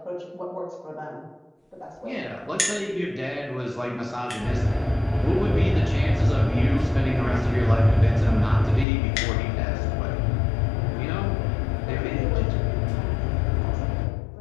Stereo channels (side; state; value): right; drops out; at 8.8 s